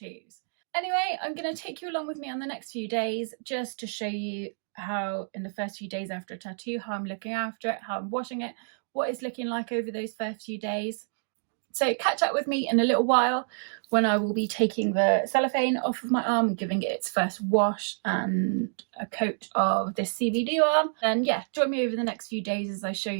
Anyway, I'm going to take you along with me on the next few days just to show you how in the first few days after a tattoo, how I'm looking after it, how I'm washing it, what it's looking like over those first few days. So catch up with me in a little while when I will be taking the cellophane off of my arm and giving it its first wash and a coat of this Cbd Balm. And yeah, join me over the next few days as I show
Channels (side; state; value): left; silent; digital silence